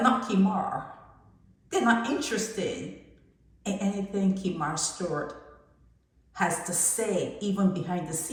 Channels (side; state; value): both; identical; correlation 1.00